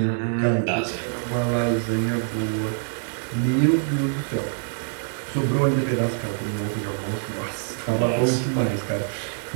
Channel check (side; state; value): left; silent; digital silence